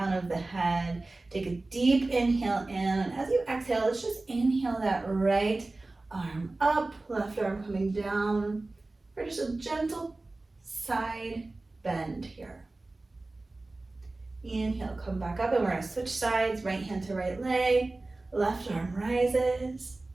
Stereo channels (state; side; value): quieter; left; 3.1 dB